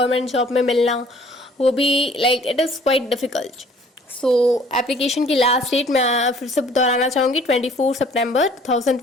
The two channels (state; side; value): normal; both; correlation 0.55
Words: जॉब में मिलना वो भी like it is quite difficult. So application की लास्ट डेट मैं फिर से दोहराना चाहूँगी 24 सितंबर